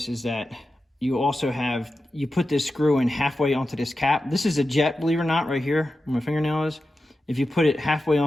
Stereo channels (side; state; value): both; normal; correlation 0.91